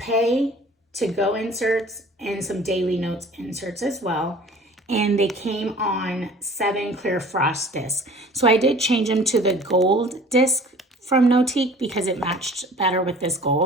to go inserts, and some daily notes inserts as well. And they came on 7 Clearfrost discs. So I did change them to the gold disc from Notiq because it matched better with this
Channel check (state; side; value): normal; both; correlation 0.47